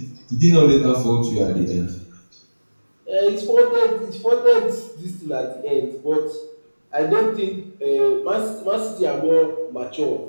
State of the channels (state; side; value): inverted; both; correlation -1.00